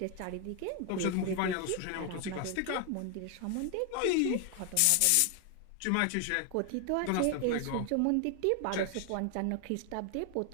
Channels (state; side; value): different; both; correlation 0.00